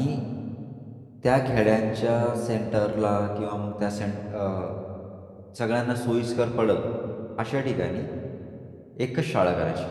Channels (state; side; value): identical; both; correlation 1.00